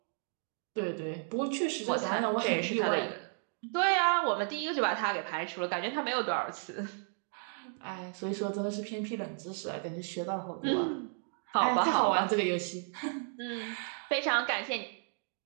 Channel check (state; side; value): silent; left; 56 dB below the other